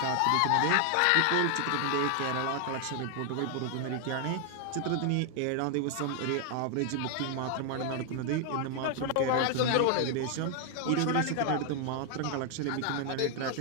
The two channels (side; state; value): both; different; correlation 0.00